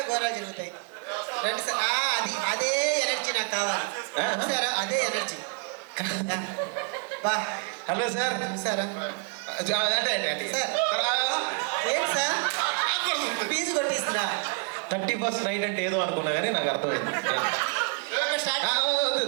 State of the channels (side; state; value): left; quieter; 39.3 dB